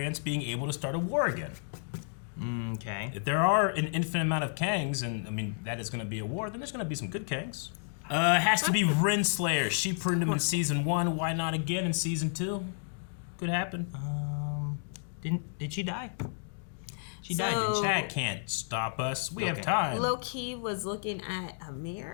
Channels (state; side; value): silent; right; digital silence